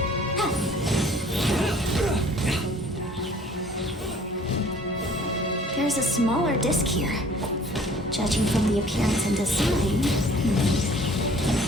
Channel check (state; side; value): normal; both; correlation 0.53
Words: There's a smaller disc here. Judging from the appearance and design...